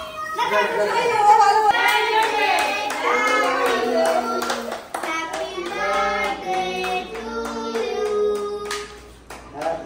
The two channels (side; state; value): both; identical; correlation 1.00